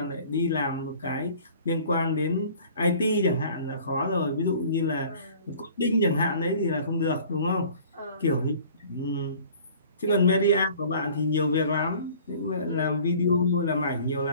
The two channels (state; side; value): inverted; both; correlation -0.49